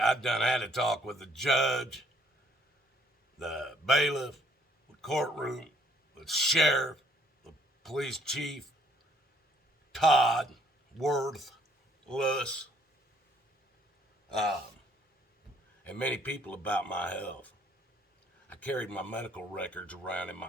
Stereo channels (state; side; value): normal; both; correlation 0.65